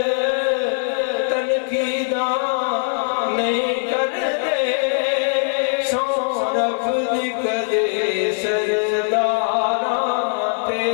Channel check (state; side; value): silent; right; digital silence